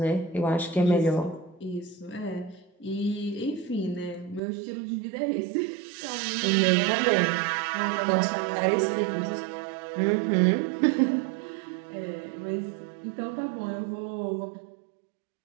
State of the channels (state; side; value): drops out; left; at 4.4 s